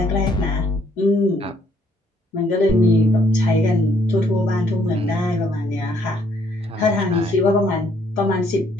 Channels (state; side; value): normal; both; correlation 0.67